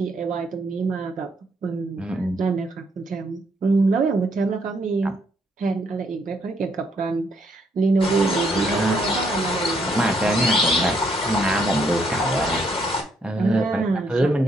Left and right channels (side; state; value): both; normal; correlation 0.72